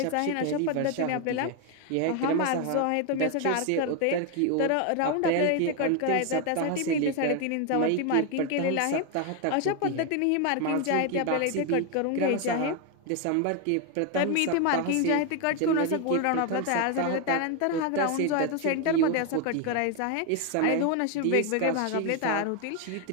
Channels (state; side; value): different; both; correlation 0.01